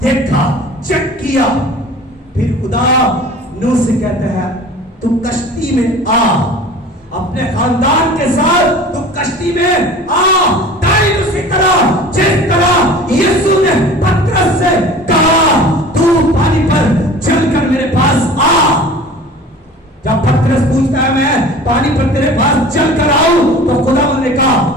देखा, चेक किया। फिर खुदा नूह से कहते हैं तू कश्ती में आ, अपने खानदान के साथ तू कश्ती में आ। तारीफ उसी तरह जिस तरह यीशु ने पतरस से कहा तू पानी पर चलकर मेरे पास आ। जब पतरस पूछता है मैं पानी पर तेरे पास चलकर आऊं, तो खुदा ने कहा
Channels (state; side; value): normal; both; correlation 0.42